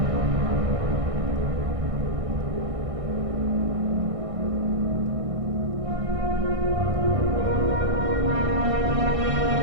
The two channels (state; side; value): late; left; 1.6 ms